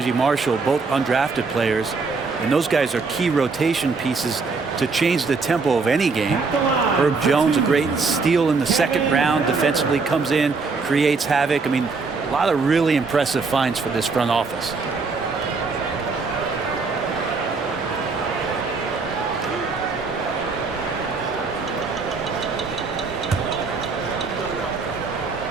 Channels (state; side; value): quieter; left; 4.4 dB